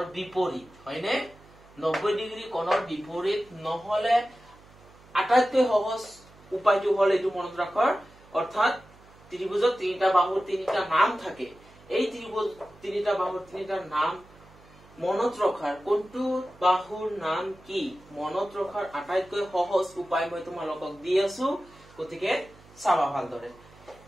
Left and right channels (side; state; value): right; noise; hum, 25 dB below the sound